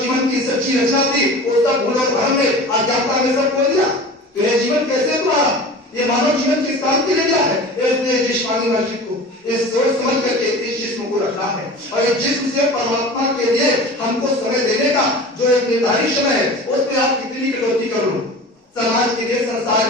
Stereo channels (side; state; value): both; normal; correlation 0.37